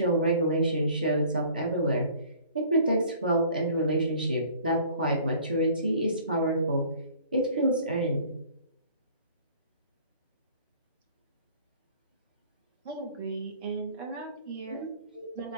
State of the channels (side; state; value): both; inverted; correlation -0.52